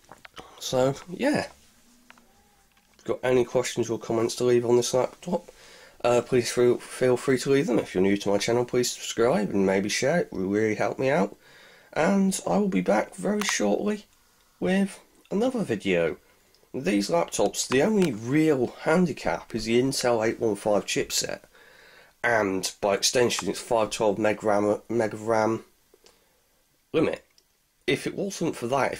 So yeah, if you've got any questions or comments to leave on this laptop, please feel free to leave them. If you're new to my channel, please subscribe and maybe share. It will really help me out. And I will be back very shortly with another video. These laptops, the only real handicap is the Intel 815 chipset, and by extension it's 512 meg of RAM limit. If it wasn't for that,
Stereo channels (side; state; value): both; identical; correlation 1.00